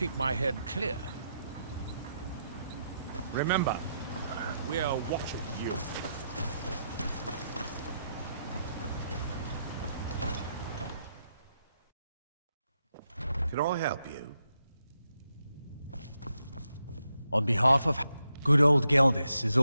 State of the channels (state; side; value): inverted; both; correlation -0.81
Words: my head clear. Remember, we're watching you. Can I help you? On behalf of... Good old Geldis is